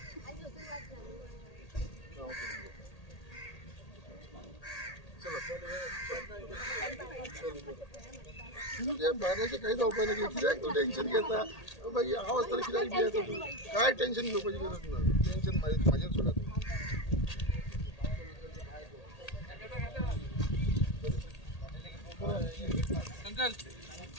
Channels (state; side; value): late; right; 1.8 ms